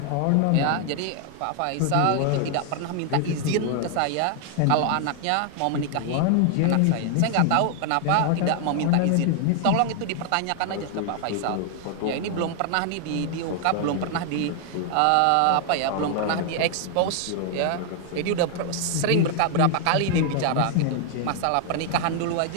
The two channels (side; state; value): both; different; correlation 0.00